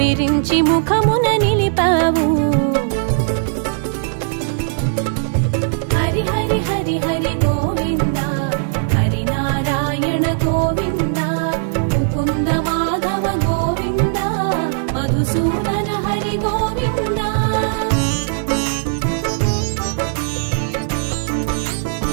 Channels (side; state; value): left; silent; digital silence